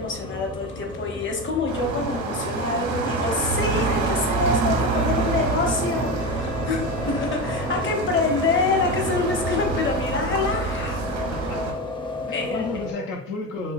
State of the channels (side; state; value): both; normal; correlation 0.21